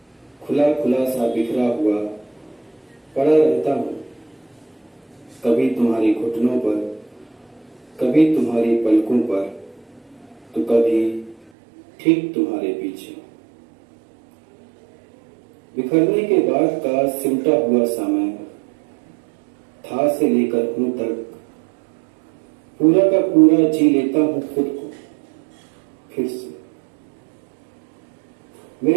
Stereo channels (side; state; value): left; drops out; at 11.4 s